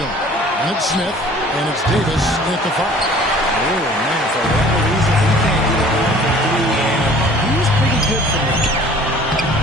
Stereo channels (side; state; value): both; normal; correlation 0.50